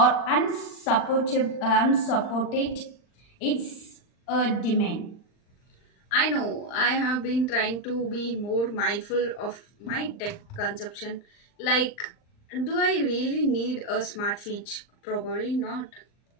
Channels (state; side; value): late; right; 39 ms